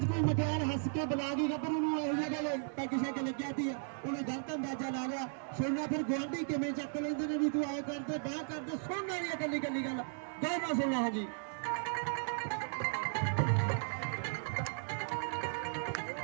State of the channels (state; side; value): silent; left; digital silence